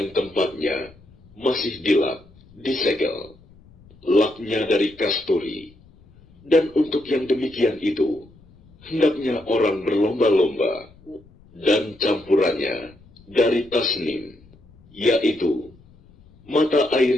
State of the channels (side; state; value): left; noise; rumble, 27 dB below the sound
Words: tempatnya masih dilap, disegel. Laknya dari kasturi. Dan untuk yang demikian itu, hendaknya orang berlomba-lomba, dan campurannya dari tasnim, yaitu mata